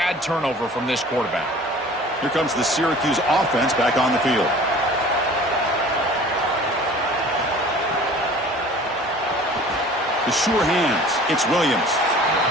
turnover from this quarterback. Here comes the Syracuse offense back on the field. The sure hands. It's Williams.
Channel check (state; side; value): normal; both; correlation 0.46